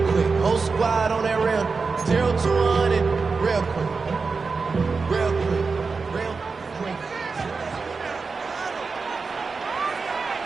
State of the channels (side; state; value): left; quieter; 4.6 dB